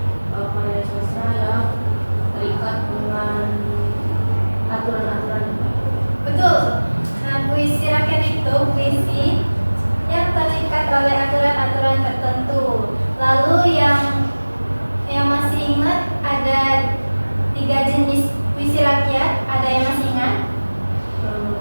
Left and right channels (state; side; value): inverted; both; correlation -1.00